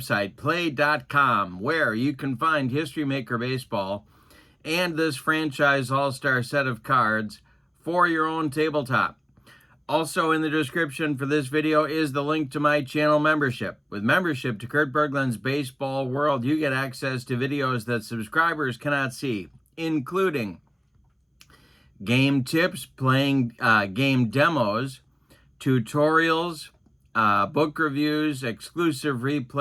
play.com, where you can find History Maker Baseball and this franchise all-star set of cards for your own tabletop. Also in the description for this video is the link to my channel membership. With membership to Kurt Berglund's Baseball World, you get access to videos that subscribers cannot see, including game tips, playing game demos, tutorials, book reviews, exclusive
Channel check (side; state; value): both; identical; correlation 1.00